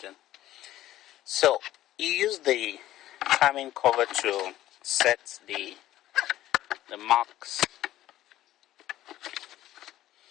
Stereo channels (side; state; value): right; quieter; 14.1 dB